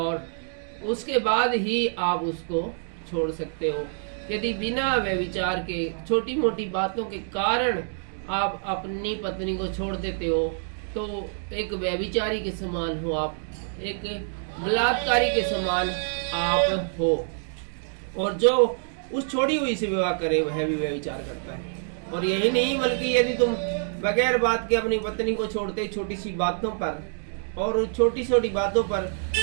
उसके बाद ही आप उसको छोड़ सकते हो। यदि बिना व्यभिचार के छोटी मोटी बातों के कारण आप अपनी पत्नी को छोड़ देते हो तो एक व्यभिचारी के समान हो आप, एक बलात्कारी के समान आप हो। और जो उस छोड़ी हुई से विवाह करे वह भी व्यभिचार करता है। और यही नहीं बल्कि यदि तुम बगैर बात के अपनी पत्नी को छोड़ते छोटी सी बातों पर और छोटी छोटी बातों पर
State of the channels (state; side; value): silent; left; digital silence